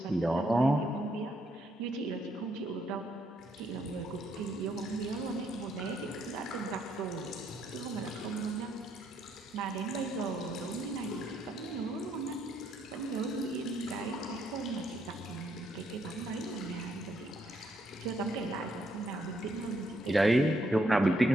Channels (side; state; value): both; normal; correlation 0.74